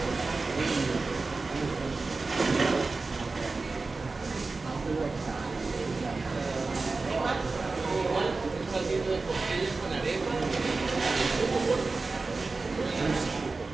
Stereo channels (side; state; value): left; quieter; 3.8 dB